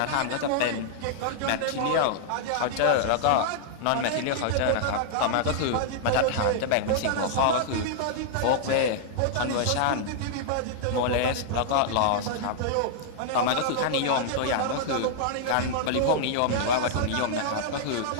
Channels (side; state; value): both; different; correlation -0.01